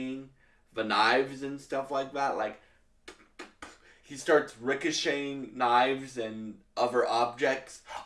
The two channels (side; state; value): both; identical; correlation 1.00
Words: the knives and stuff like that. Like, he starts ricocheting knives and other objects